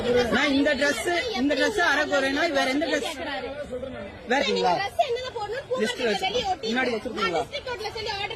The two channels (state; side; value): identical; both; correlation 1.00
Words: நான் இந்த ட்ரெஸ் அரை போறேன்னா வேற எந்த ட்ரெஸ் வேறீங்களா? முன்னாடி வச்சிருக்கீங்களா?